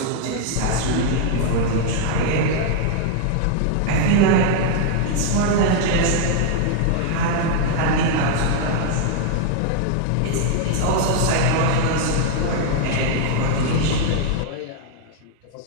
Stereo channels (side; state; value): both; different; correlation 0.00